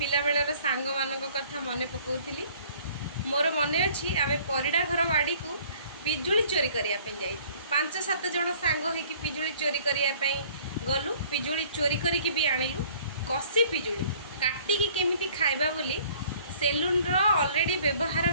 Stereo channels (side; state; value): both; inverted; correlation -0.55